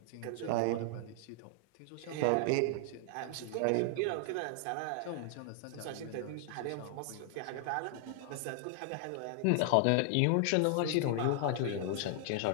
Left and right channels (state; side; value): different; both; correlation 0.00